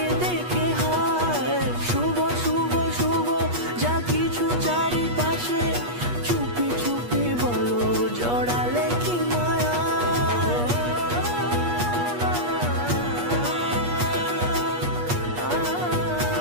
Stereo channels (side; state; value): left; late; 8.4 ms